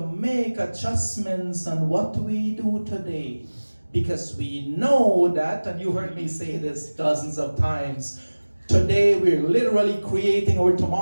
adjustments on what we do today. Because we know that, and you heard me say this dozens of times, today we're literally creating our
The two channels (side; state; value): both; inverted; correlation -1.00